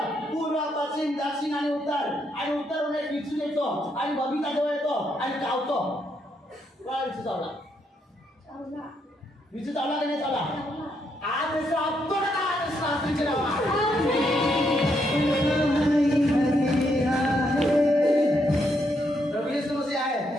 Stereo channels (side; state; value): both; normal; correlation 0.77